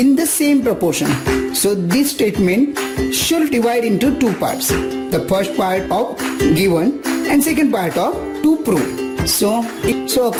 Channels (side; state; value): both; identical; correlation 1.00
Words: the same proportion. So this statement should divide into two parts. The first part of given and second part of to prove. So